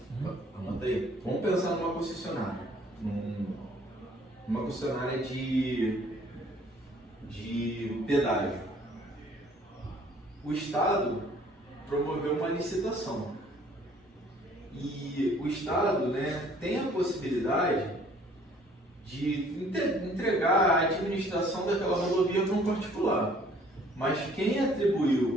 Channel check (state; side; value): normal; both; correlation 0.57